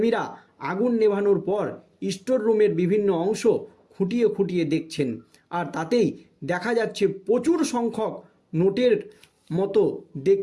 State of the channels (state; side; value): identical; both; correlation 1.00